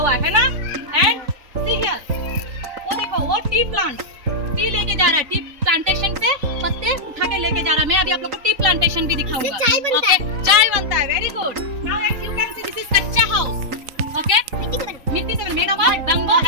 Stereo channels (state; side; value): late; left; 3.9 ms